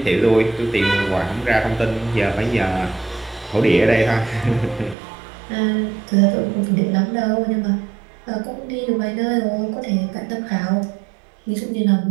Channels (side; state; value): left; drops out; at 5.0 s